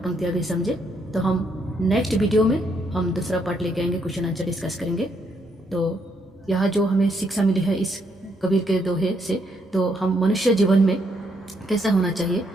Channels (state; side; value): normal; both; correlation 0.74